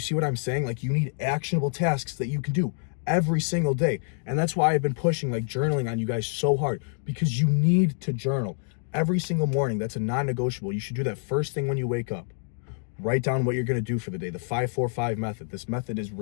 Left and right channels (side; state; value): right; silent; digital silence